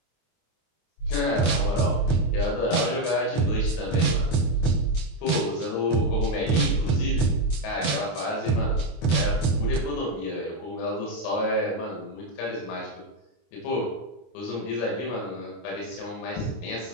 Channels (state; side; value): late; right; 25 ms